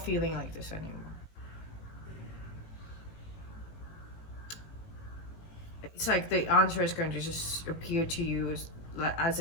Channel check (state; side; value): late; right; 18 ms